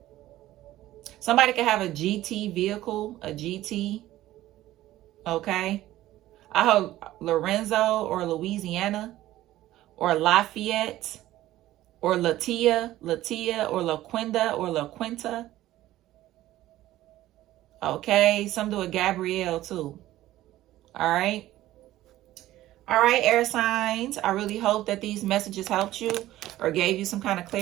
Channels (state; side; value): quieter; left; 15.0 dB